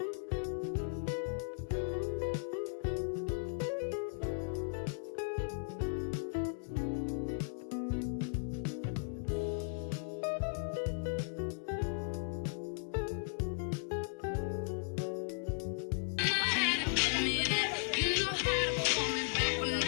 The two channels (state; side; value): silent; right; digital silence